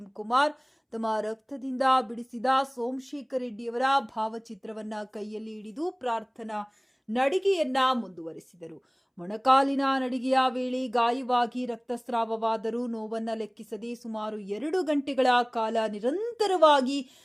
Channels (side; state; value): both; identical; correlation 1.00